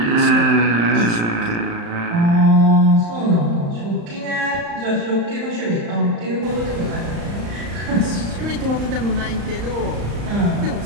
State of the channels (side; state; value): left; late; 35 ms